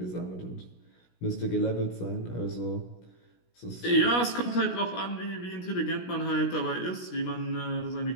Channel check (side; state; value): right; late; 17 ms